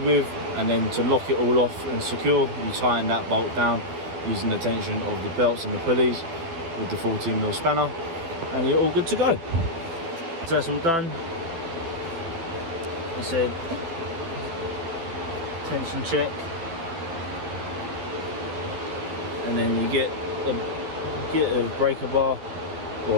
And then to lock it all off and secure, you tighten that bolt down using the tension of the belts and the pulleys with the 14mm spanner, and you're all good to go. So that's all done. I said tension check, and then you get a breaker bar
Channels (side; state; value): left; late; 12 ms